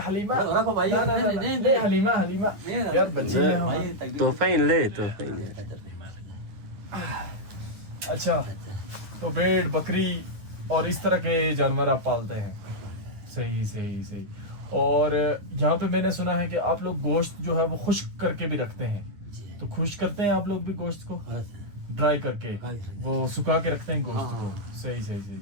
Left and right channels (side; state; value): left; late; 9.5 ms